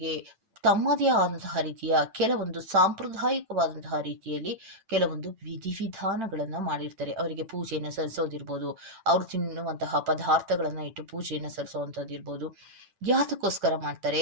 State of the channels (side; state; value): left; late; 8.9 ms